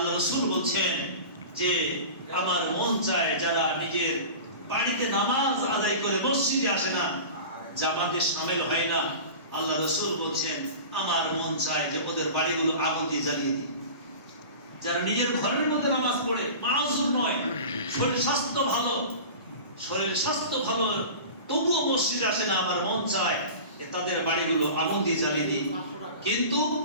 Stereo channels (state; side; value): inverted; both; correlation -0.35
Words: রাসূল বলছেন যে আমার মন চায় যারা নিজের বাড়িতে নামাজ আদায় করে মসজিদে আসে না, জামাতে শামিল হয় না, আল্লাহ রাসূল বলছেন আমার মন চায় যে ওদের বাড়িগুলো আগুন দিয়ে জ্বালিয়ে দিই। যারা নিজের ঘরের মধ্যে নামাজ পড়ে, মাউজুর নয়, শরীর স্বাস্থ্য ভালো, তবুও মসজিদে আসে না, আমার মন চায় যে তাদের বাড়িগুলো আগুন দিয়ে জ্বালিয়ে দিই। কিন্তু